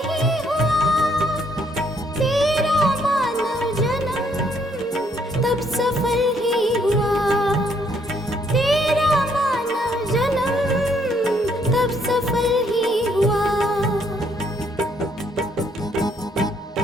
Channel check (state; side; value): normal; both; correlation 0.69